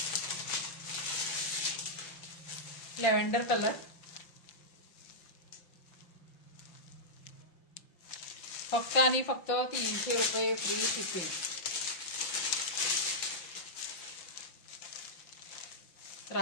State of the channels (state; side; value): late; right; 5.7 ms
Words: Lavender colour. फक्त आणि फक्त 300 रुपये फ्री शिपिंग.